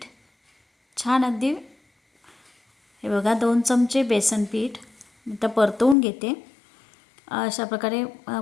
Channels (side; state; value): right; drops out; at 6.0 s